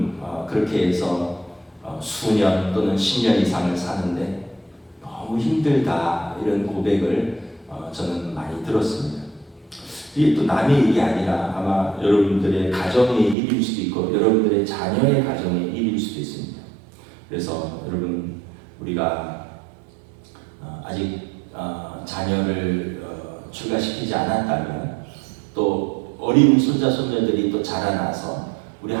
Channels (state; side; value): drops out; left; at 13.4 s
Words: 그렇게 해서 수년 또는 10년 이상을 사는데 너무 힘들다, 이런 고백을 저는 많이 들었습니다. 이게 또 남의 일이 아니라 아마 여러분들의 가정의 일일 수도 있고 여러분들의 자녀의 가정의 일일 수도 있습니다. 그래서 여러분, 우리가 아직 자녀를 출가시키지 않았다면, 또 어린 손자 손녀들이 또 자라나서 우리